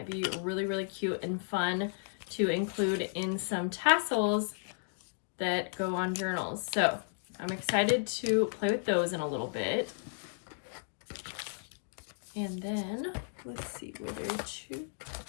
be really, really cute and fun to include in some tassels that go on journals. So I'm excited to play with those in a little bit. And then let's see, were there two?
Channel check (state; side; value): silent; right; digital silence